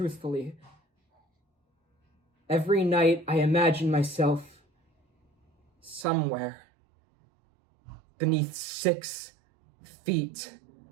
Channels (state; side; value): drops out; left; at 6.1 s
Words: every night I imagine myself somewhere beneath 6 feet